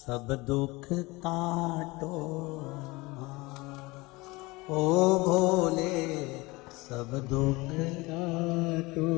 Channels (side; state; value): right; quieter; 23.0 dB